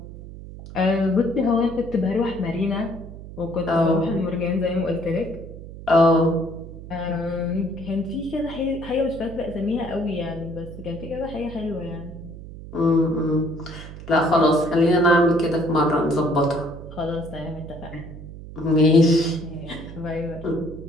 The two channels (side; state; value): right; noise; hum, 13 dB below the sound